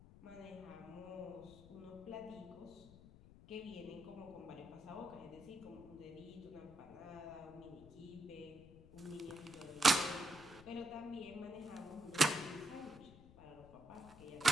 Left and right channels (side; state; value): left; noise; rumble, 19 dB below the sound